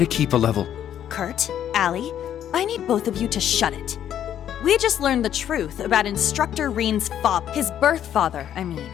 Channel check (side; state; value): right; quieter; 10.3 dB